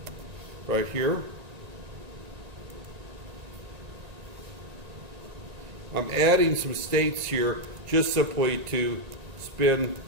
right here. I'm adding some states here just simply to spin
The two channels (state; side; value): late; left; 1.9 ms